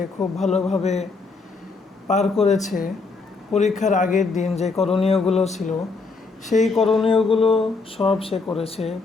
খুব ভালোভাবে পার করেছে। পরীক্ষার আগের দিন যে করণীয়গুলো ছিল সেই করণীয়গুলো সব সে করেছে,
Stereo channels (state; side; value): quieter; right; 4.1 dB